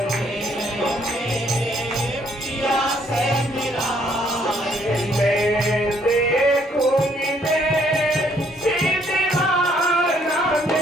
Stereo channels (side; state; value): both; normal; correlation 0.67